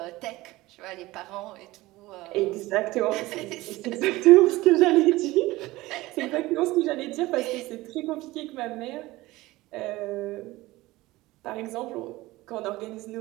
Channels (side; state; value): left; quieter; 19.1 dB